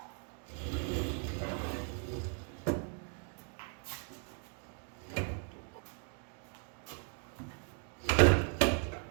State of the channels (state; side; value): quieter; left; 39.0 dB